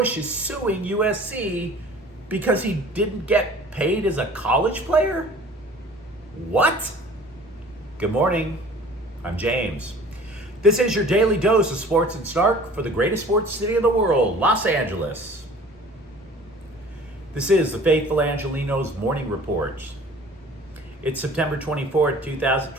is suing USC because he didn't get paid as a college player? What? Good morning. I'm James. This is your daily dose of sports and snark for the greatest sports city in the world, Los Angeles. This is the Faithful Angelenos Morning Report. It's September 24th,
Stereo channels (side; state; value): both; normal; correlation 0.47